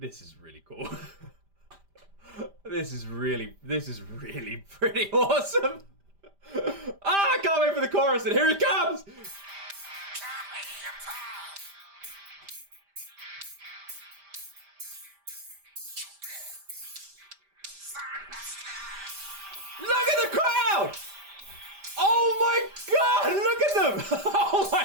is really cool. This is really pretty awesome. Ah, I can't wait for the chorus, and here it comes! Look at the crowd! Oh my god, look at them! Oh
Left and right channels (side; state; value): left; late; 5.0 ms